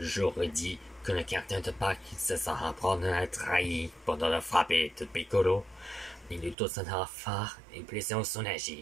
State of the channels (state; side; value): drops out; left; at 6.6 s